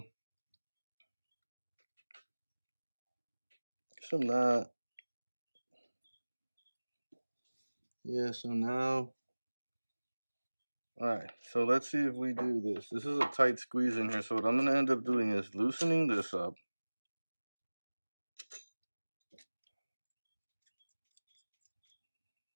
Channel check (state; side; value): inverted; both; correlation -1.00